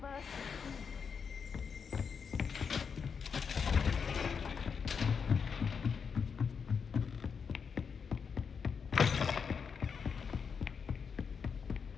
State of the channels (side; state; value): right; quieter; 6.2 dB